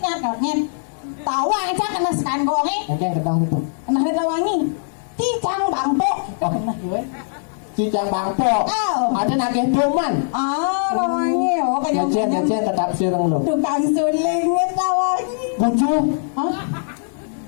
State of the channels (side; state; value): right; silent; digital silence